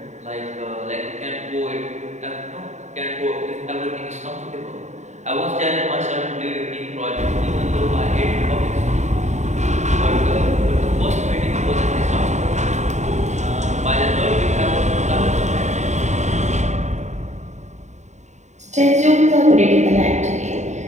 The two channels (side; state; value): left; late; 0.34 ms